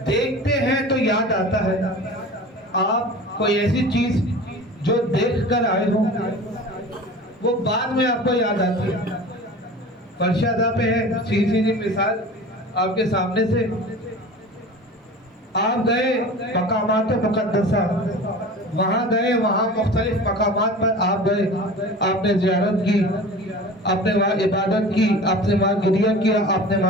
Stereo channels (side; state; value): both; normal; correlation 0.37